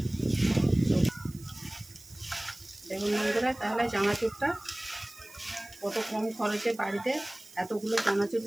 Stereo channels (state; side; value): noise; right; hiss, 21 dB below the sound